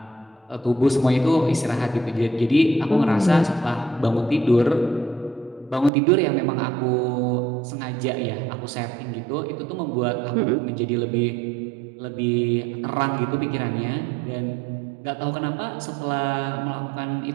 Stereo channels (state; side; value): drops out; left; at 5.9 s